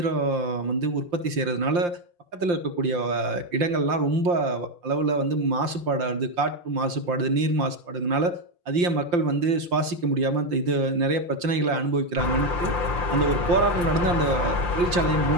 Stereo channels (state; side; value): late; left; 5.7 ms